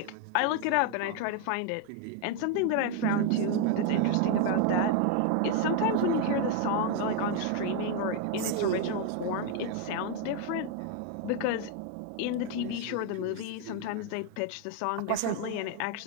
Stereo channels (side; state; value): both; different; correlation 0.01